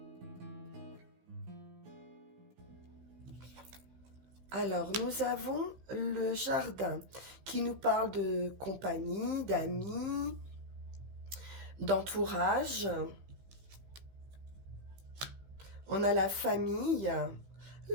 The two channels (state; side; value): late; left; 15 ms